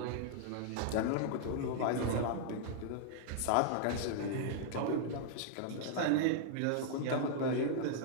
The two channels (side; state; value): both; different; correlation -0.01